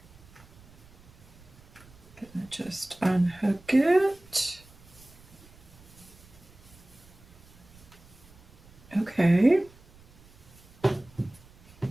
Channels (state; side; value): noise; right; rumble, 24 dB below the sound